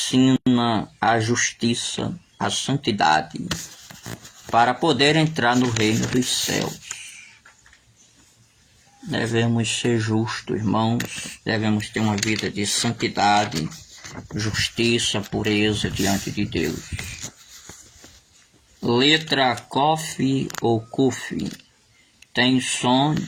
a justiça, a santidade, para poder entrar no reino dos céus. Devemos ser justos, irmãos, devemos ter uma vida de santidade, justiça, pureza diante de Deus. Letra Kof ou Kuf tem som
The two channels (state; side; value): identical; both; correlation 1.00